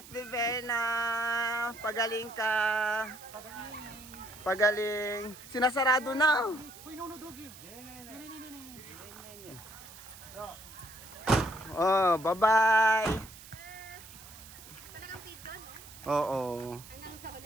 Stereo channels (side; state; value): right; noise; hiss, 17 dB below the sound